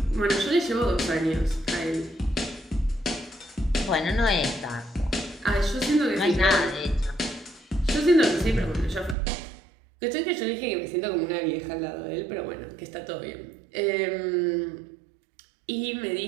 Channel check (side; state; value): left; drops out; at 9.2 s